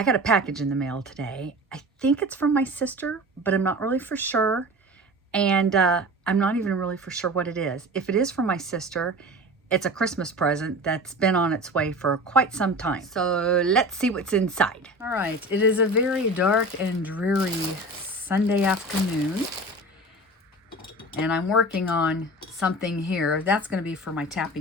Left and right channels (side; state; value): both; normal; correlation 0.35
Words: got a package in the mail today. I think it's from my sister, but I'm not really for sure, and I'm not even really for sure what it is. If it is from my sister, it's a Christmas present that's been on its way for quite some time. So let's see what's inside. All right, it is a very dark and dreary Sunday afternoon. And I'm working on something here. That's going to be for my